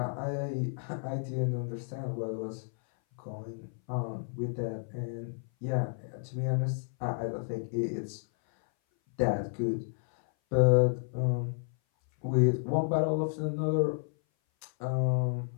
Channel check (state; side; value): silent; right; 57 dB below the other